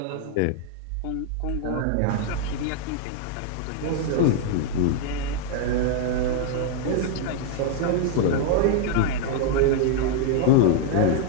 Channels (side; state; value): both; different; correlation 0.00